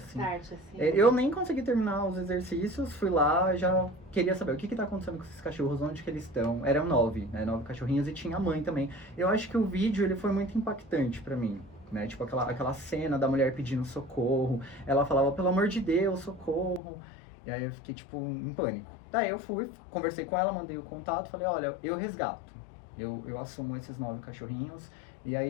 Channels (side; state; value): right; drops out; at 16.8 s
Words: assim. Start, assim. Eu nem consegui terminar os exercícios, fui lá, já queria saber o que tá acontecendo com esses cachorros, onde que eles estão. Eram 9, né, 9 cachorrinhos e tinha a mãe também. Eu acho que o vídeo, ele foi muito impactante pra mim, né, tipo aquela cena da mulher pedindo socorro, ela falava, pelo amor de Deus, socorro. E aí eu fiquei, tipo, em pânico. Daí eu fui, conversei com ela, mandei o contato, falei, olha, eu resgato. Eu assumo esses 9 cachorrinhos. E